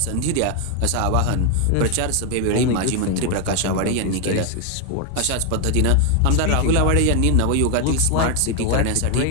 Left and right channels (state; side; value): different; both; correlation 0.01